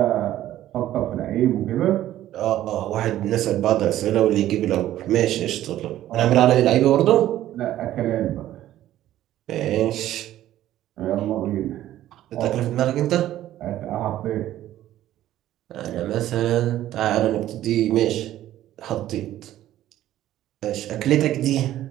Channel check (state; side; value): quieter; left; 13.3 dB